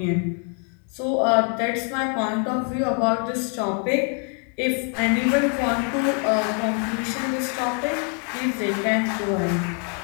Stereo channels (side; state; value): right; quieter; 39.9 dB